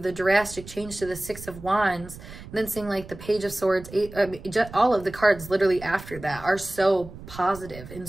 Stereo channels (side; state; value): right; noise; rumble, 15 dB below the sound